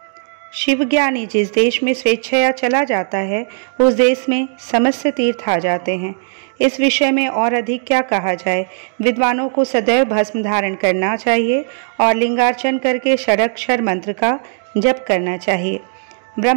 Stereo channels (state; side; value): silent; left; 68 dB below the other